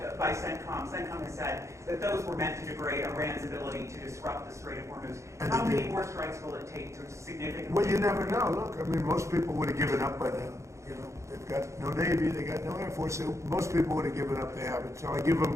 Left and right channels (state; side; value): late; left; 0.14 ms